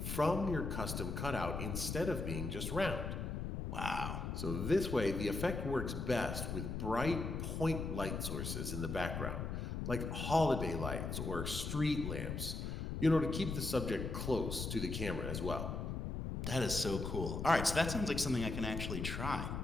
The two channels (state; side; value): noise; left; rumble, 3 dB below the sound